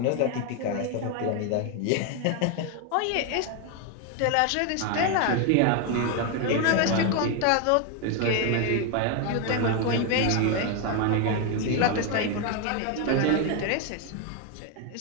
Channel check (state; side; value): different; both; correlation 0.01